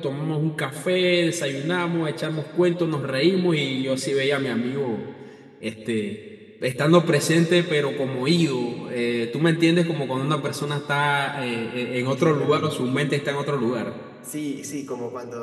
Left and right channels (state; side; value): identical; both; correlation 1.00